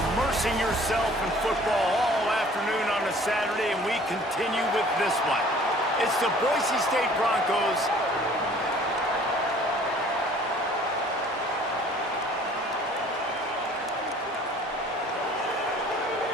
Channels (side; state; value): both; normal; correlation 0.52